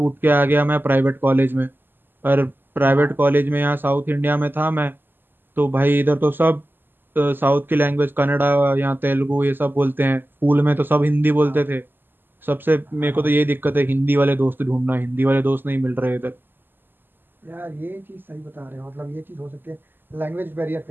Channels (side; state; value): left; late; 0.094 ms